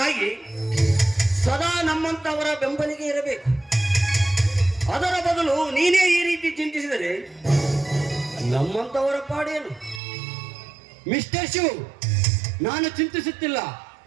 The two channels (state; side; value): drops out; left; at 10.0 s